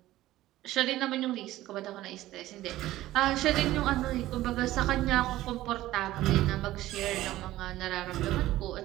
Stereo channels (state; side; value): quieter; left; 15.6 dB